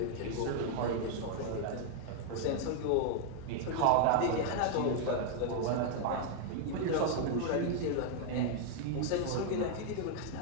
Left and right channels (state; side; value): different; both; correlation 0.00